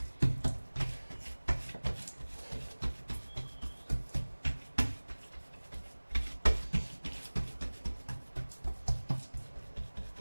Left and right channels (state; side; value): inverted; both; correlation -1.00